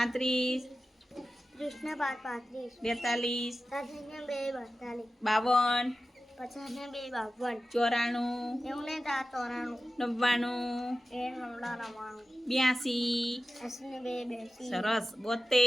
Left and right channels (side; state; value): both; normal; correlation 0.94